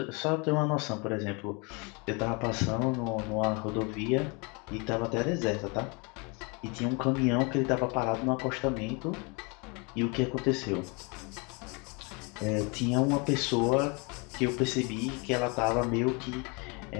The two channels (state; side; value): quieter; right; 30.8 dB